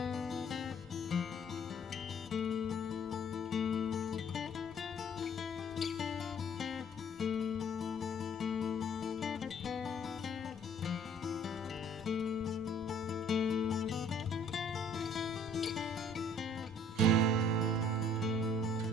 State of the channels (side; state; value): both; normal; correlation 0.57